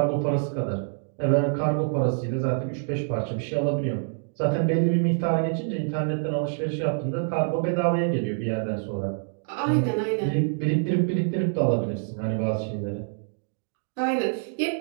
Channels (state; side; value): silent; left; digital silence